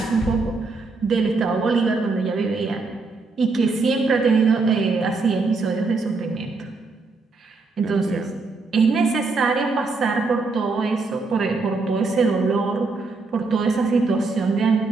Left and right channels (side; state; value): left; quieter; 3.9 dB